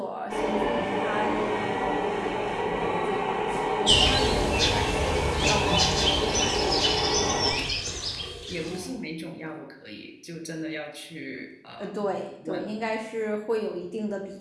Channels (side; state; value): both; identical; correlation 1.00